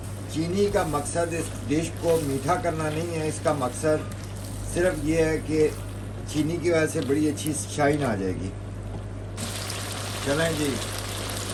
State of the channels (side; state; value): both; identical; correlation 1.00